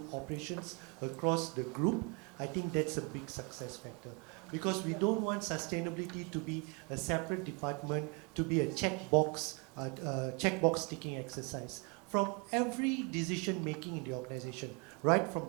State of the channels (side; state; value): left; quieter; 33.3 dB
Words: operations across the group, I think that's a big success factor. Because we don't want sustainability to be a separate department, to be a checkbox ticking exercise. From every decision making in the organization, right from